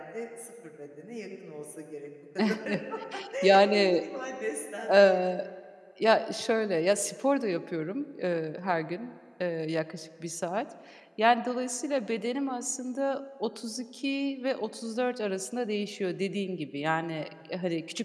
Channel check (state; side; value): identical; both; correlation 1.00